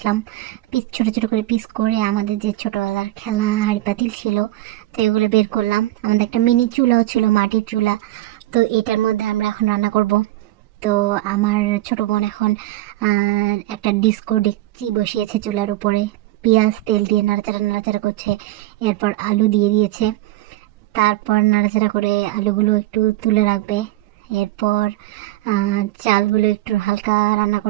ছোটো ছোটো করে পিস করে আমাদের যে ছোটোবেলার খেলনা হাঁড়ি পাতিল ছিল, তো এগুলো বের করলাম। আমাদের একটা মিনি চুলাও ছিল, মাটির চুলা। তো এটার মধ্যে আমরা এখন রান্না করব। তো আমার ছোট বোন এখন একটা ডিস্কো ডেকচি বসিয়েছে চুলার উপরে, পেঁয়াজ তেল দিয়ে নাড়াচাড়া নাড়াচাড়া করছে। এরপর আলু দিয়ে দিয়েছে, তারপর নাড়াচাড়া করে আলুগুলো একটু তুলে রাখবে। এরপর চালগুলো একটু হালকা রান্না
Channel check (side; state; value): left; quieter; 16.6 dB